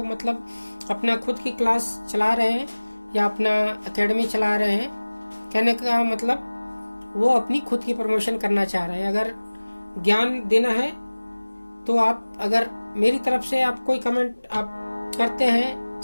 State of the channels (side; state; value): both; inverted; correlation -1.00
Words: मतलब अपना खुद की क्लास चला रहे हैं या अपना एकेडमी चला रहे हैं। कहने का मतलब वो अपनी खुद की प्रमोशन करना चाह रहे हैं। अगर ज्ञान देना है तो आप, अगर मेरी तरफ से आप कोई कमेंट आप करते हैं,